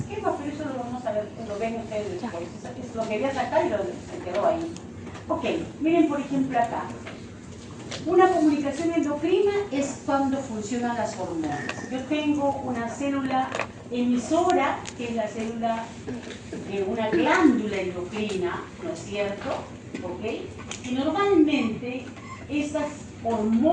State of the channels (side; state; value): both; identical; correlation 1.00